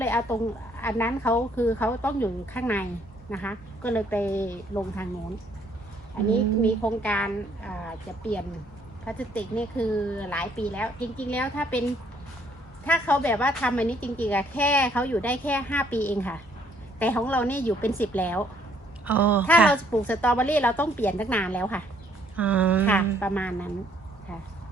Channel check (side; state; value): both; normal; correlation 0.65